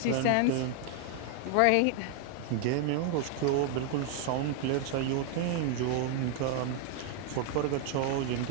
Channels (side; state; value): both; different; correlation 0.00